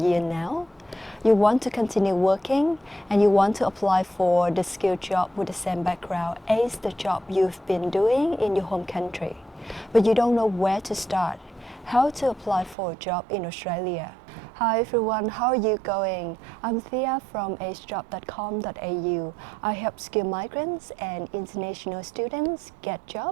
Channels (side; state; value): left; drops out; at 12.8 s